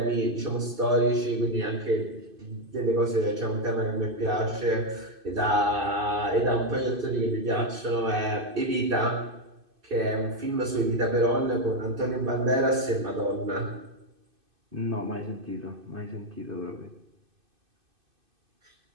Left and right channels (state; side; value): late; left; 2.5 ms